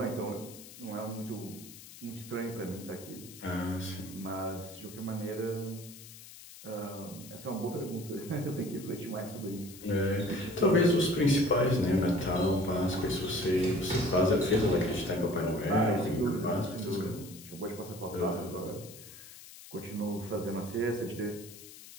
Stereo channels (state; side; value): noise; left; hiss, 17 dB below the sound